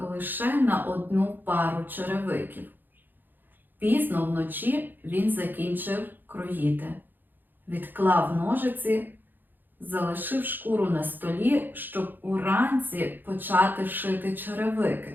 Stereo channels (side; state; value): left; late; 0.090 ms